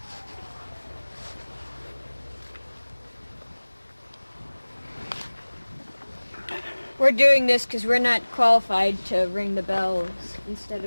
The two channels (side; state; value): both; inverted; correlation -1.00